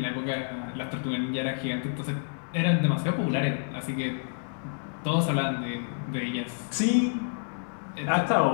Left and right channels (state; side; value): silent; right; digital silence